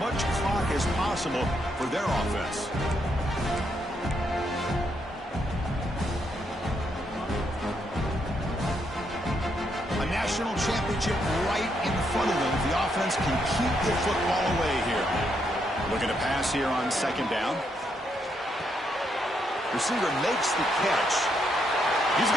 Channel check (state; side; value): normal; both; correlation 0.77